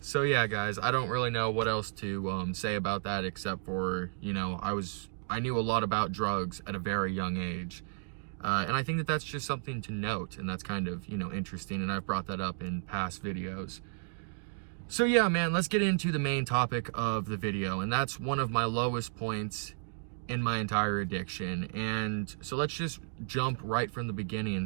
So yeah, guys, I don't really know what else to say about that, except for, I knew a lot about drugs at a very young age. And I think that that's just something to note, and that's kind of, interesting, and I've brought that up in past videos. So yeah, man, let's get into the main topic of the video, and that's one of my lowest points in my entire addiction. And so let's just jump right from the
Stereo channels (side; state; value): left; silent; digital silence